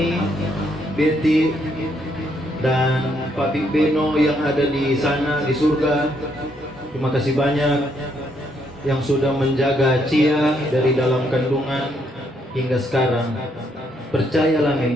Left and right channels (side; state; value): both; normal; correlation 0.73